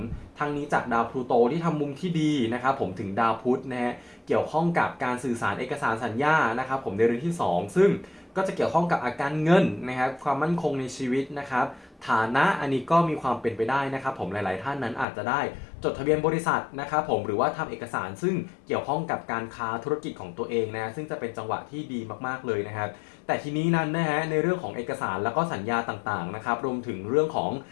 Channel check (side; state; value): right; drops out; at 15.1 s